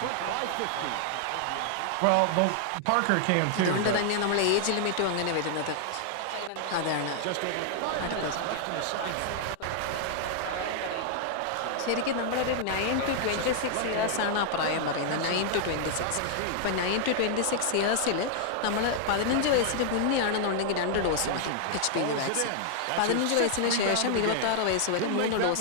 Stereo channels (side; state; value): both; different; correlation -0.01